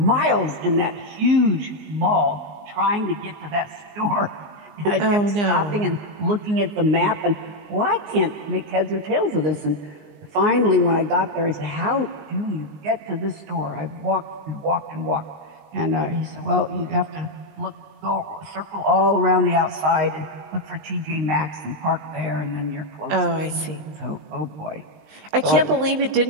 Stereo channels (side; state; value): left; late; 19 ms